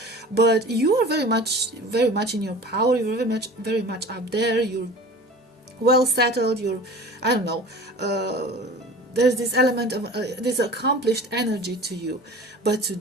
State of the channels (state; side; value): normal; both; correlation 0.40